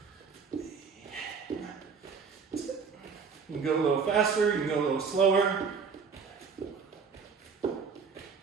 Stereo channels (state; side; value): quieter; left; 5.7 dB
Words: You can go a little faster, you can go a little slower.